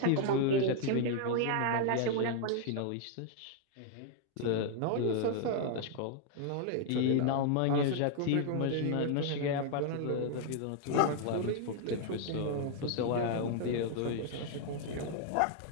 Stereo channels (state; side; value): different; both; correlation 0.00